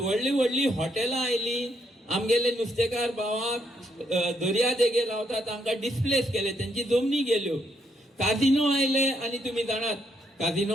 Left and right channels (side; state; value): both; normal; correlation 0.75